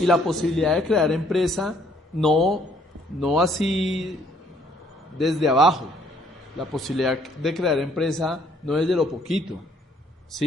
la posibilidad de crear empresa no así desde abajo. La posibilidad de crear empresa no es de lo poquito,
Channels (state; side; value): normal; both; correlation 0.64